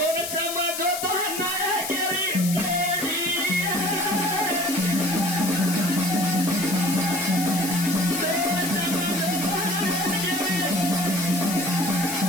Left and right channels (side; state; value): left; noise; hiss, 5 dB below the sound